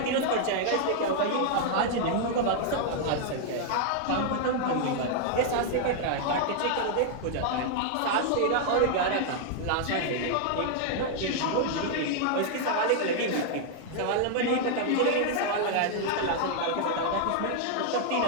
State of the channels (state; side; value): different; both; correlation 0.00